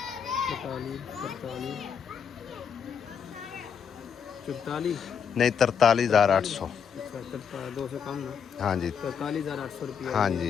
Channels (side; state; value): right; quieter; 7.2 dB